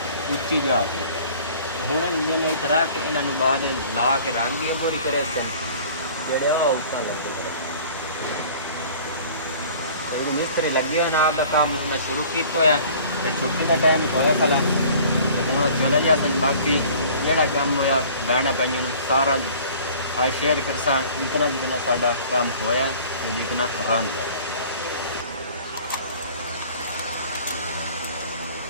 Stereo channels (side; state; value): both; inverted; correlation -0.48